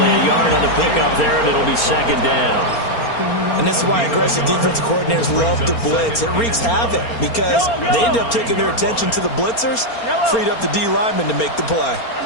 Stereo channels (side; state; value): right; late; 4.3 ms